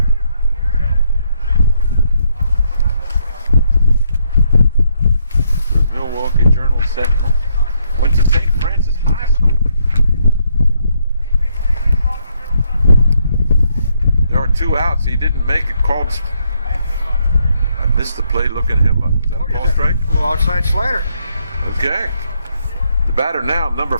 The Milwaukee Journal Sentinel went to St. Francis High School. There are 2 outs. He didn't make it. Called. I missed the play looking him up. Is that a ball strike? A little outside slider. Okay. The batter now, number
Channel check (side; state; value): both; inverted; correlation -0.74